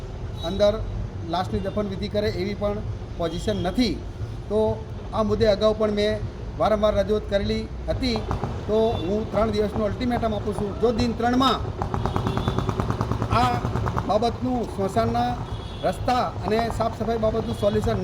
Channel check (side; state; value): both; identical; correlation 1.00